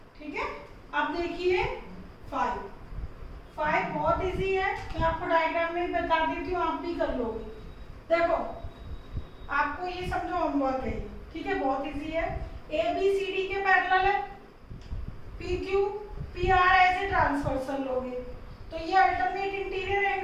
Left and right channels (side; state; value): both; identical; correlation 1.00